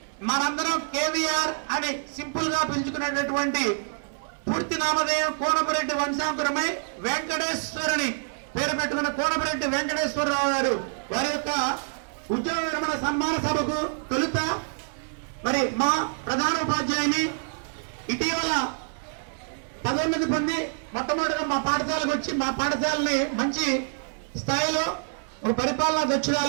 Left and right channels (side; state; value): left; silent; digital silence